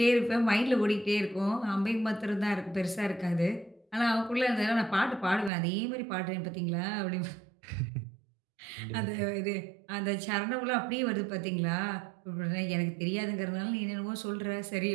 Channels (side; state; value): left; drops out; at 5.5 s